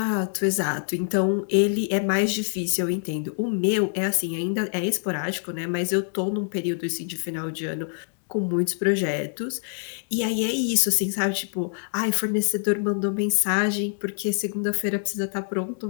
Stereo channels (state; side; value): silent; right; digital silence